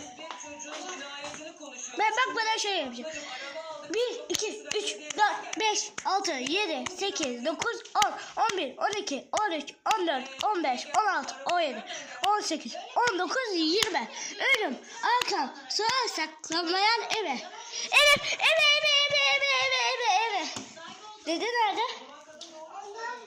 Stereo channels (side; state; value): both; identical; correlation 1.00